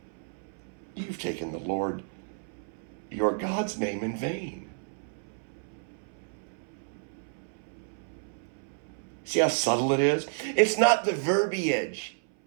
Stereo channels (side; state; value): left; silent; 57 dB below the other